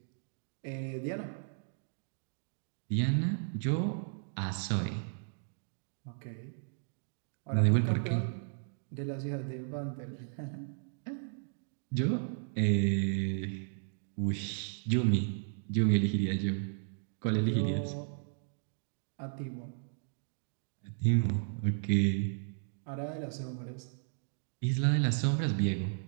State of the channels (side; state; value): left; silent; digital silence